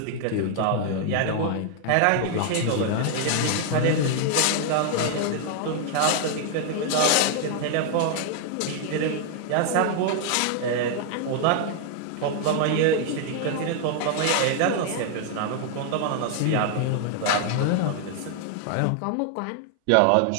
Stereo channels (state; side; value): different; both; correlation 0.00